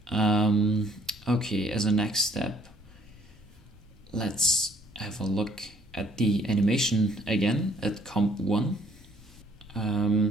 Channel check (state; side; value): normal; both; correlation 0.62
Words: Okay, as a next step, let's have a look at the animation again at comp 1.